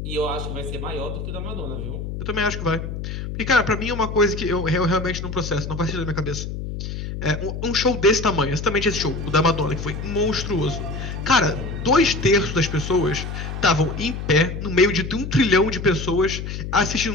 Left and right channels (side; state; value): left; noise; hum, 6 dB below the sound